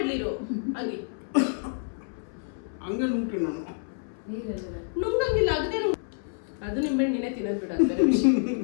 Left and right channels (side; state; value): right; silent; 59 dB below the other